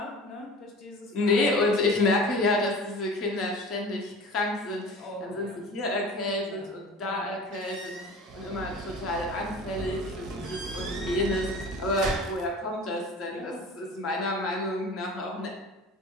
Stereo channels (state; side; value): normal; both; correlation 0.39